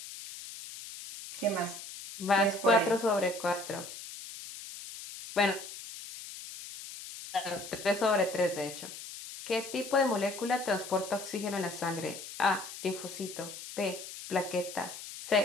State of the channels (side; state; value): left; noise; hiss, 11 dB below the sound